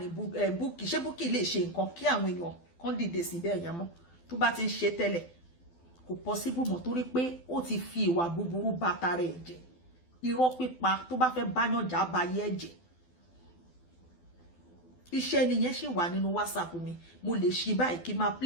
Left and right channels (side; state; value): right; late; 12 ms